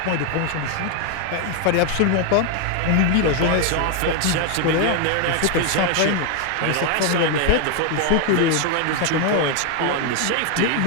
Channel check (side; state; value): both; different; correlation 0.01